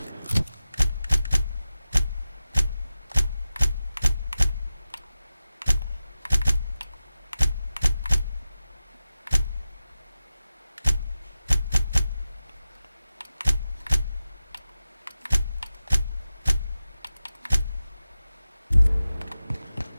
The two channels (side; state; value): both; inverted; correlation -0.94